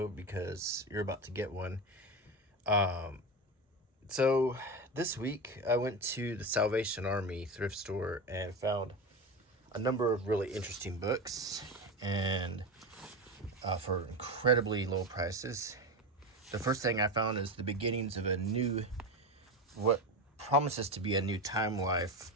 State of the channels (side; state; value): both; normal; correlation 0.20